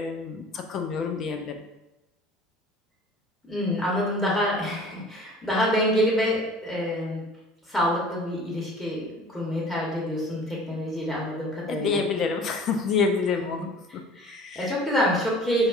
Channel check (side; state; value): both; normal; correlation 0.46